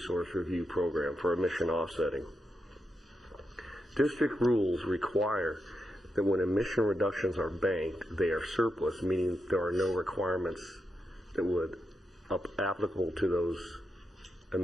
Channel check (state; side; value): normal; both; correlation 0.85